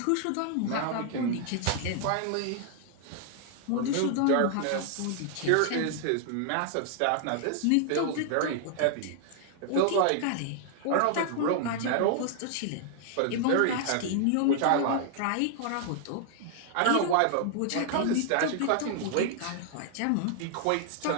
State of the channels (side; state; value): both; different; correlation 0.00